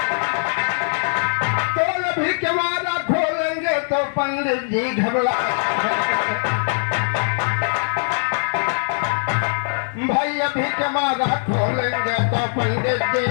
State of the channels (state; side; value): silent; right; digital silence